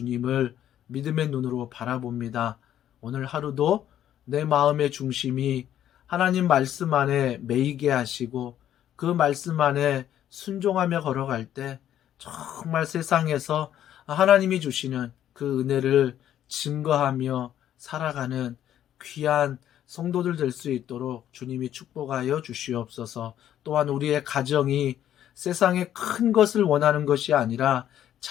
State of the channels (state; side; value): quieter; right; 11.1 dB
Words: 믿음의 눈으로 바라봅니다. 오늘 하루도 내 마음의 중심이 하나님 말씀 안에 매이게 하시고 그 말씀 안에 순종하며 걸어갈 때 정말 세상에서 하나님이 주시는 그 은혜를 증거하며 살아가는 귀한 성도들 될 수 있도록 주님이 축복하여 주시옵소서. 또한 우리의 가정이 세상의 큰 것을 원하는 것이 아니라